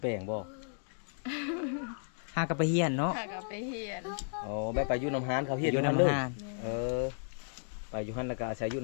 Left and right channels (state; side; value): silent; right; digital silence